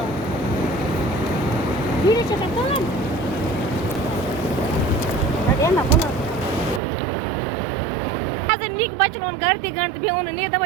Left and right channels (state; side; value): drops out; left; at 6.8 s